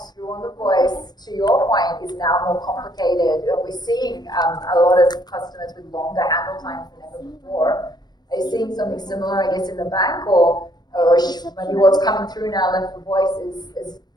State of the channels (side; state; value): right; late; 0.20 ms